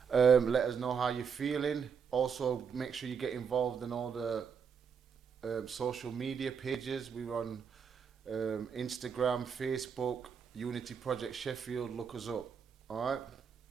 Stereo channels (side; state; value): left; quieter; 6.6 dB